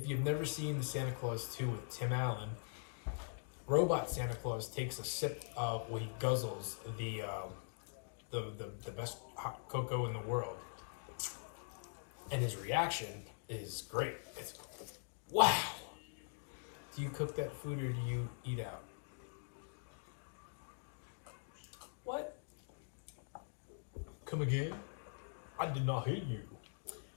you've never seen the Santa Claus 2 with Tim Allen, robot Santa Claus takes a sip of, well, he guzzles the best hot cocoa in the world. And his reaction is great. It's, wow. Do you cook that food or do you eat out? What? Come again? I did not hear you.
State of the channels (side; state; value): right; silent; digital silence